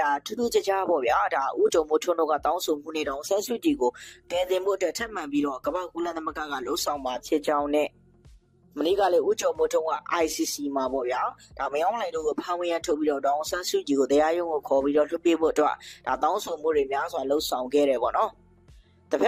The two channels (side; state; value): both; identical; correlation 1.00